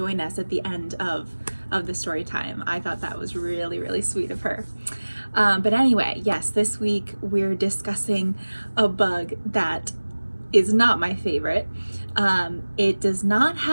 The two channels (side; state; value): both; inverted; correlation -1.00